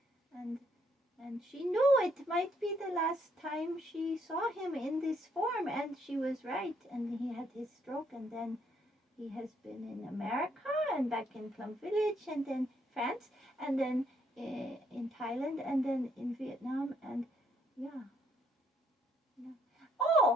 and she knew it might be the last time she saw him in this form, and she was right. And he had his stroke, and then he has been in America and back in Plum Village, and then France, and then in Thailand, and then in Vietnam, and yeah.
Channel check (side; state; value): both; normal; correlation 0.71